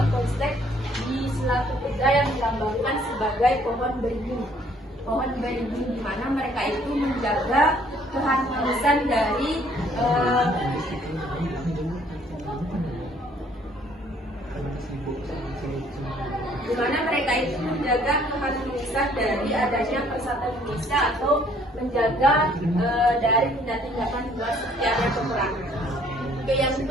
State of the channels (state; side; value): normal; both; correlation 0.61